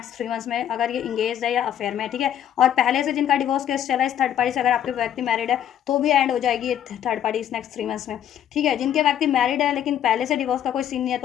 3 मंथ्स में, अगर ये इंगेज है या अफेयर में। ठीक है, और पहले से जिनका डिवोर्स केस चला है इस थर्ड पार्टी से, अगर आपके व्यक्ति मैरिड है तो भी एंड हो जाएगी ये थर्ड पार्टी इस नेक्स्ट 3 मंथ्स में। ठीक है, जिनके व्यक्ति मैरिड है लेकिन पहले से डिवोर्स का कोई सीन नहीं है,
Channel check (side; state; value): right; quieter; 10.3 dB